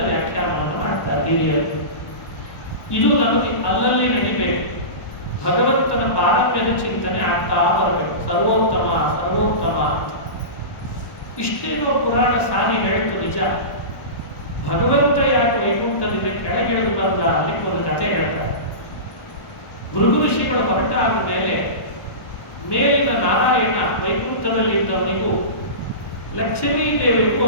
ವ್ಯಾಖ್ಯಾನವನ್ನು ಮಾಡ್ತಾರೆ ಹಿರಿಯರು. ಇದು ನಮಗೆ ಅಲ್ಲಲ್ಲಿ ನಡಿಬೇಕು. ಭಗವಂತನ ಪಾರಮ್ಯದ ಚಿಂತನೆ ಆಗ್ತಾ ಬರಬೇಕು. ಸರ್ವೋತ್ತಮ ಸರ್ವೋತ್ತಮ ಅಂತ ಇಷ್ಟೇನೋ ಪುರಾಣ ಸಾರಿ ಹೇಳ್ತು ನಿಜ. ಭಗವಂತ ಯಾಕೆ ವೈಕುಂಠದಿಂದ ಕೆಳಗಿಳಿದು ಬಂದ ಅಲ್ಲಿಗೆ ಒಂದು ಕಥೆ ಹೇಳ್ತಾರೆ. ಭೃಗು ಋಷಿಗಳು ಹೊರಟಾದ ಮೇಲೆ ಮೇಲಿನ ನಾರಾಯಣ ವೈಕುಂಠದಲ್ಲಿ ಇದ್ದವನಿಗೂ ಲಕ್ಷ್ಮೀ ದೇವಿಗೂ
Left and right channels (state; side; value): late; right; 1.1 ms